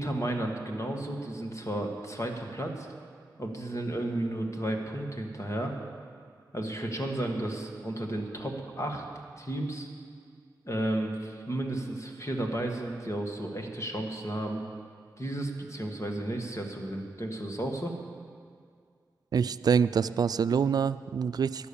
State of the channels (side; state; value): left; quieter; 3.1 dB